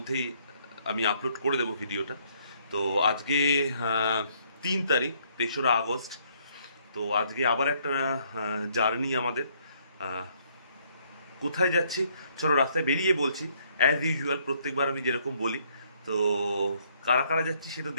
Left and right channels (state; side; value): inverted; both; correlation -0.67